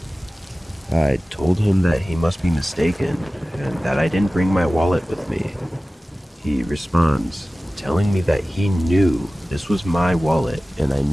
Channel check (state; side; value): normal; both; correlation 0.97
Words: I told him that he must be mistaken and that I didn't bring my wallet with me. He responds, telling me that he knew this was my wallet and I